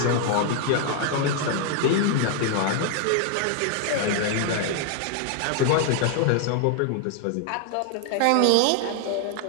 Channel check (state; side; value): different; both; correlation 0.00